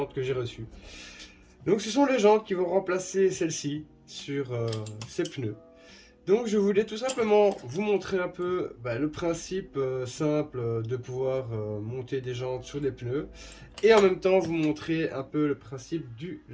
que j'ai reçue. Donc ce sont les jantes qui vont remplacer celles-ci sur ces pneus. Donc je voulais tout simplement vous montrer un peu le principe simple de pouvoir monter des jantes sur des pneus et en même temps vous montrer un peu le principe du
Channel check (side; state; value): both; identical; correlation 1.00